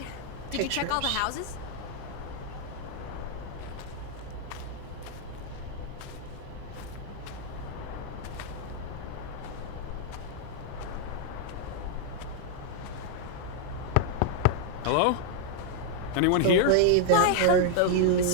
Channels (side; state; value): both; different; correlation 0.00